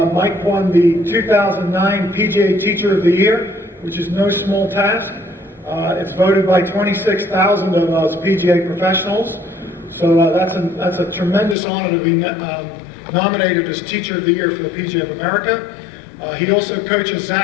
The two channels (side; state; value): right; drops out; at 11.6 s